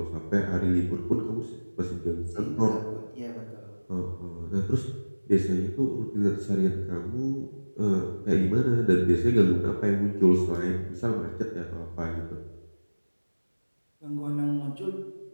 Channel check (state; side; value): inverted; both; correlation -1.00